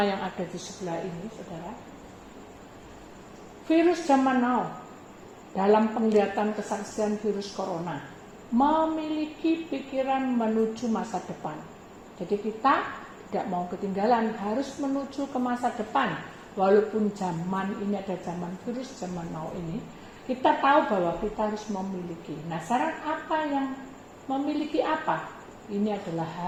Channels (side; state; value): both; identical; correlation 1.00